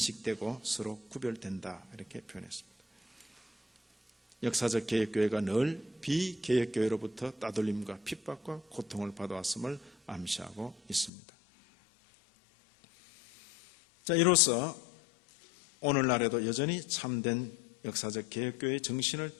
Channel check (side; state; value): right; drops out; at 11.1 s